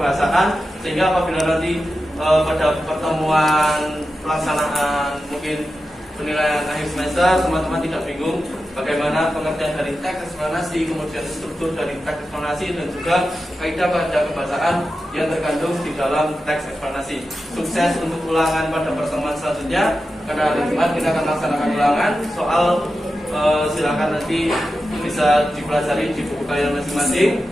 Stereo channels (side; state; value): both; normal; correlation 0.91